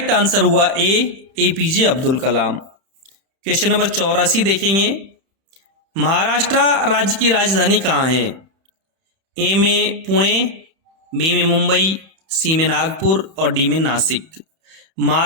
आंसर हुआ ए, APJ Abdul Kalam. Question number 84 देखेंगे। महाराष्ट्र राज्य की राजधानी कहाँ है? ए में पुणे, बी में मुंबई, सी में नागपुर और डी में नासिक।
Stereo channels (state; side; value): late; left; 31 ms